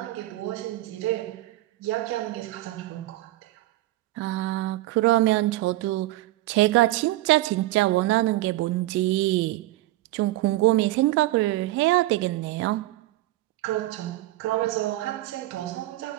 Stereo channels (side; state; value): left; quieter; 17.1 dB